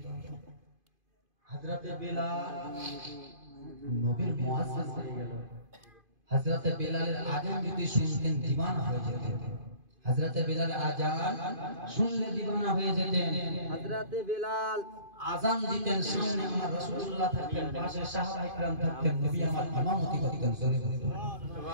হযরতে বেলাল নবীর মুয়াজ্জিন হয়ে গেল হযরতে বেলালের আযান যদি শুনতেন দিওয়ানা হয়ে যেতেন হযরতে বেলালের আযান শুনলে দিওয়ানা হয়ে যেতেন হযরতে বেলাল আযান দিতেন সামনে আমার রাসূলুল্লাহ থাকতেন পাশে সাহাবায়ে کرام থাকতেন নবী আমার ইমামতি করতেন সুবহানাল্লাহ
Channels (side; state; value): left; late; 2.5 ms